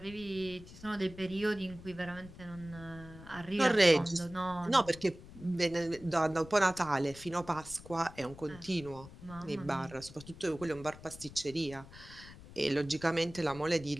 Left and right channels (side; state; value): left; noise; rumble, 17 dB below the sound